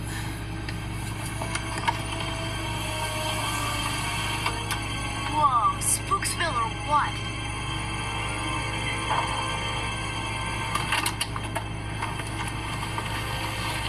Whoa, Spooksville or what?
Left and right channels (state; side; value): identical; both; correlation 1.00